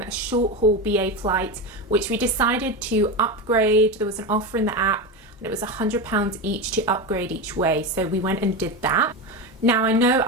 short haul BA flight, which we decided to upgrade. There was an offer in the app and it was £100 each to upgrade each way. So we went and did that. Now I know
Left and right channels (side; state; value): both; normal; correlation 0.18